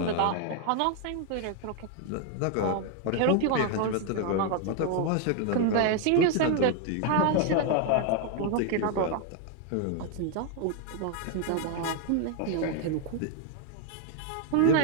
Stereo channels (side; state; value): both; different; correlation 0.01